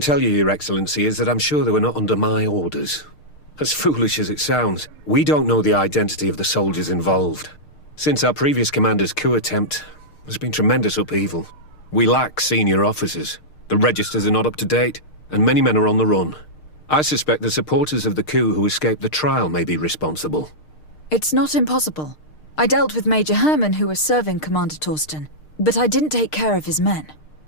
you, Your Excellency, is that I'm sure they were not under my orders. As foolish as it sounds, we don't know the identity of the soldiers involved. Since our previous commander's coup attempt, there's been tremendous upheaval. We lack senior officers. The registers are not up to date, and many men are on the run. I suspect the supporters of the coup who escaped the trial may be responsible. It's not impossible. I dealt with Major Herman, who was serving Commander Torsten, but I didn't take care of his men.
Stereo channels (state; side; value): late; right; 6.6 ms